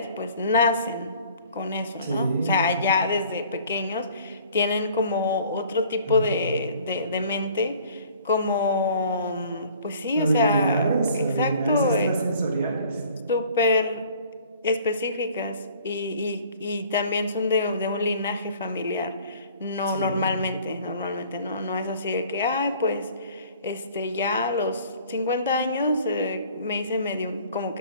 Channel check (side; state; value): both; inverted; correlation -0.52